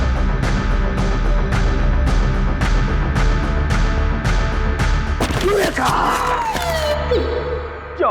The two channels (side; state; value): both; identical; correlation 1.00